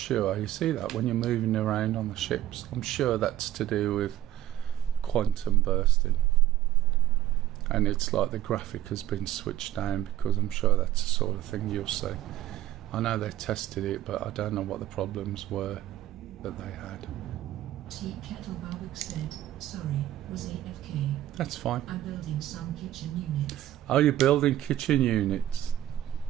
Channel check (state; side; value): quieter; left; 13.3 dB